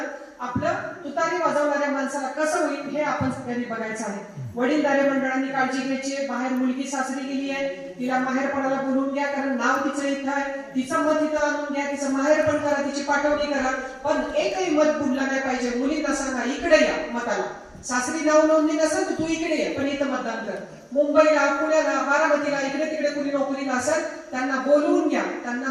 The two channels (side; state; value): both; identical; correlation 1.00